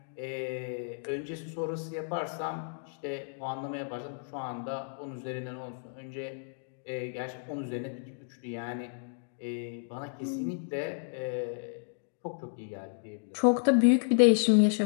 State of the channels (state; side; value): silent; right; digital silence